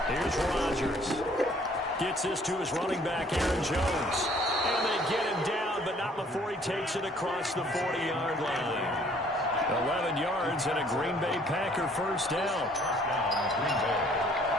Here's Rodgers. Gets this to his running back, Aaron Jones. And they get him down, but not before he takes it across the 40-yard line. 11 yards and a Green Bay Packer 1st down.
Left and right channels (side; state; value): both; normal; correlation 0.59